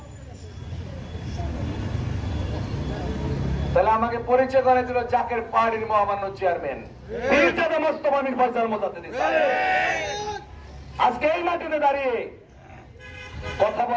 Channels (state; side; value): identical; both; correlation 1.00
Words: তাহলে আমাকে পরিচয় করে দিল জাকের পাহাড়ির মহামান্য চেয়ারম্যান মির্জাদা মোস্তফা মির ফয়সাল মোজাদ্দেদি সাহেব। আজকে এই মাটিতে দাঁড়িয়ে কথা